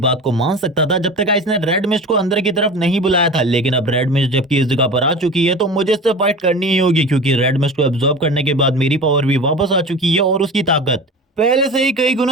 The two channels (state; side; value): normal; both; correlation 0.34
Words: को मान सकता था जब तक इसने रेड मिस्ट को अंदर की तरफ नहीं बुलाया था, लेकिन अब रेड मिस्ट जबकि इस जगह पर आ चुकी है तो मुझे इससे फाइट करनी ही होगी, क्योंकि रेड मिस्ट को एब्जॉर्ब करने के बाद मेरी पावर भी वापस आ चुकी है और उसकी ताकत पहले से ही कई